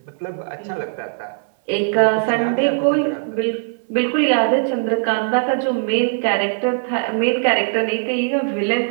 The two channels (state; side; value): silent; left; 63 dB below the other